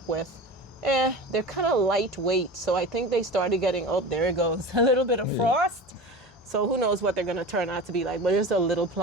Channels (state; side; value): normal; both; correlation 0.32